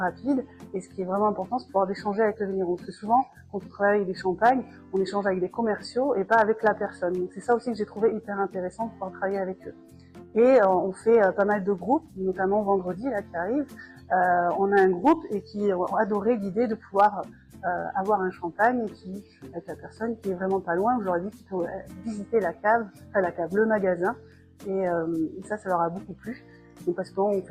Et ce qui est vraiment important, c'est de pouvoir échanger avec le vigneron. Parce que souvent, quand on travaille avec des champagnes, on échange avec des commerciaux et pas avec la personne. Donc c'est ça aussi que j'ai trouvé hyper intéressant de pouvoir travailler avec eux. Et on fait pas mal de groupes, notamment vendredi là qui arrive. On a un groupe et qui ont adoré l'idée de pouvoir avoir un champagne avec la personne qui est vraiment pas loin. J'aurais dit qu'il faut visiter la cave, le magasin. Et ça leur a beaucoup plu. Donc parce qu'on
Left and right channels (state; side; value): identical; both; correlation 1.00